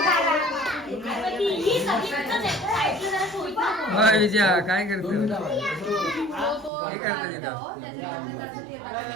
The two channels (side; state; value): left; drops out; at 6.7 s